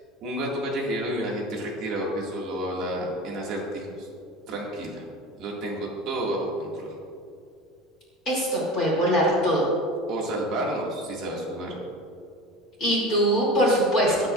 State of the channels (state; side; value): normal; both; correlation 0.33